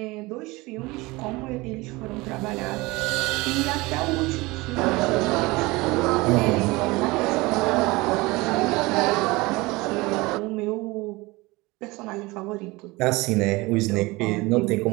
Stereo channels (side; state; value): left; quieter; 22.6 dB